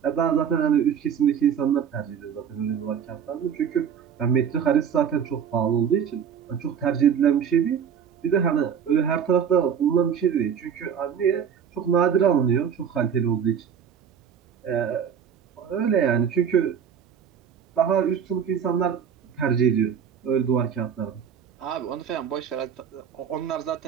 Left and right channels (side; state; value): left; quieter; 7.9 dB